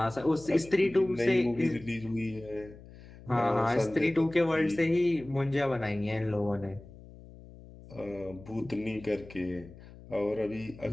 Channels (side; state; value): left; noise; hum, 19 dB below the sound